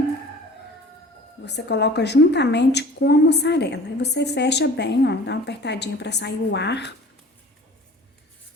você coloca juntamente com a mussarela. Aí, você fecha bem, ó, dá uma apertadinha pra sair o ar.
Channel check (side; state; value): both; normal; correlation 0.44